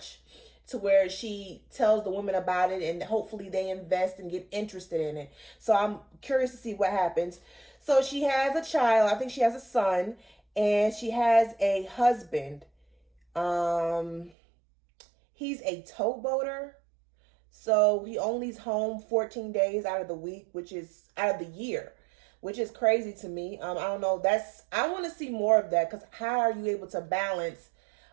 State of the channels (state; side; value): drops out; left; at 14.3 s